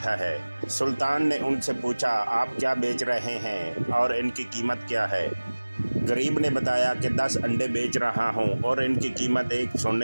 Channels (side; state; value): both; inverted; correlation -1.00